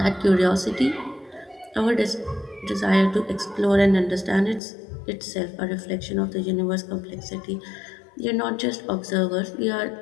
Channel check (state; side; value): drops out; right; at 4.6 s